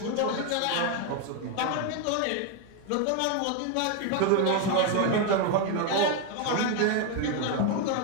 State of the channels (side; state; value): both; different; correlation 0.01